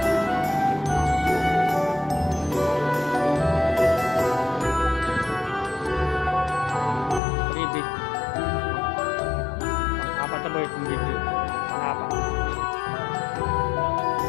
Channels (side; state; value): right; drops out; at 7.2 s